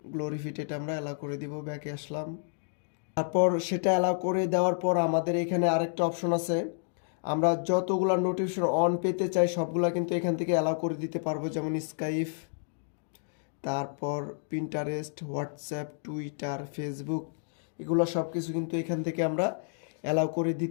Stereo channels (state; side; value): silent; right; digital silence